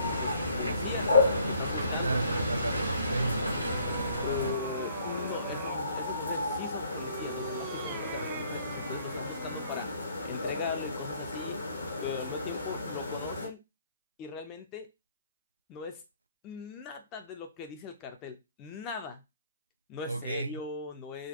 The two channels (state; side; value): inverted; both; correlation -0.62